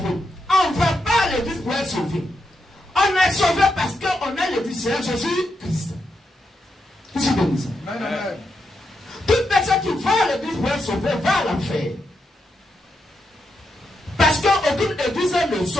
On ne va pas à l'église pour être sauvé. On est sauvé parce qu'on est l'église Seigneur Jésus-Christ. Qui se bénisse. Amen. Toute personne qui va à l'église pour être sauvé va à l'enfer. Parce qu'aucune église ne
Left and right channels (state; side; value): normal; both; correlation 0.83